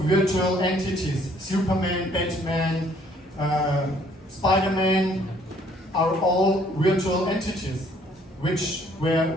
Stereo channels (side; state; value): both; normal; correlation 0.62